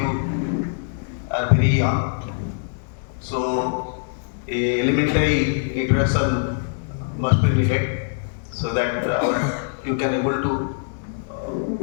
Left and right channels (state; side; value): silent; right; digital silence